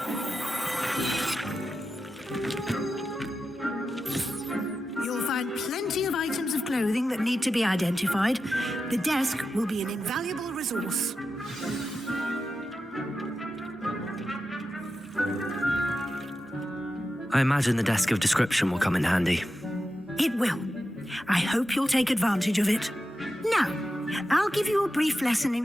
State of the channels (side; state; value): both; normal; correlation 0.91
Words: Plenty of items of clothing that need to be identified. The desk will be an invaluable resource. I imagine the desk of description will come in handy. It will. I hope you'll take advantage of it. Now, I'll give you a brief lesson